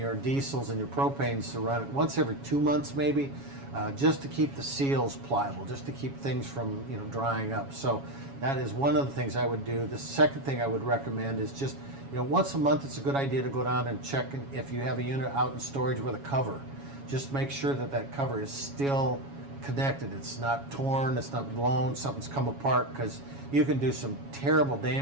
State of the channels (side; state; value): left; late; 7.2 ms